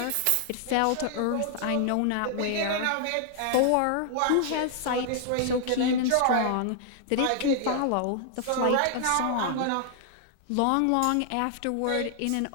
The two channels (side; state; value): both; different; correlation -0.01